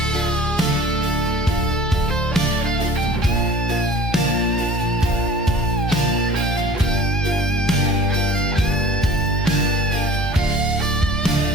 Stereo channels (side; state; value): both; normal; correlation 0.45